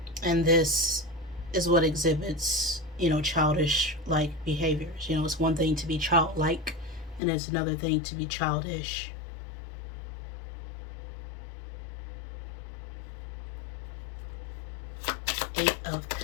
And this is what exhibits, childish like behaviors. It's one thing to be childlike, and it's another thing to be childish. Eight of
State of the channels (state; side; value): drops out; right; at 7.2 s